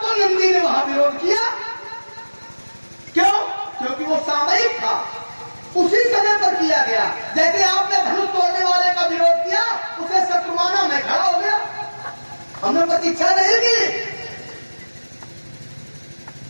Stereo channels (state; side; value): inverted; both; correlation -1.00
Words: तो नंदी ने वहां विरोध किया। क्यों? क्योंकि वो सामयिक था, उसी समय पर किया गया। जैसे आपने धनुष तोड़ने वाले का विरोध किया, उसे शत्रुमाना में खड़ा हो गया, हमने प्रतीक्षा नहीं की।